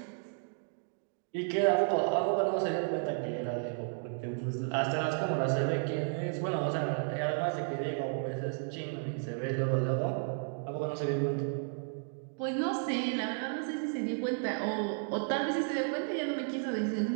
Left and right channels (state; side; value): silent; left; digital silence